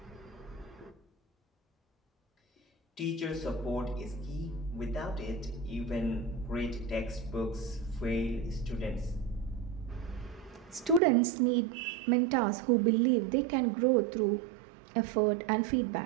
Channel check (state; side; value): drops out; left; at 11.0 s